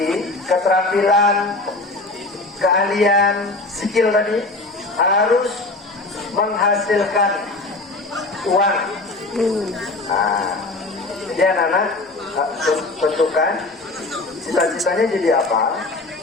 keterampilan, keahlian, skill tadi harus menghasilkan uang. Jadi anak-anak tentukan cita-citanya jadi apa.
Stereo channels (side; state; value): right; quieter; 3.1 dB